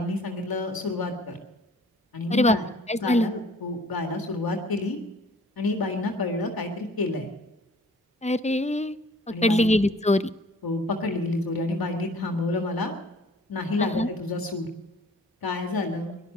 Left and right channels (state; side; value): normal; both; correlation 0.53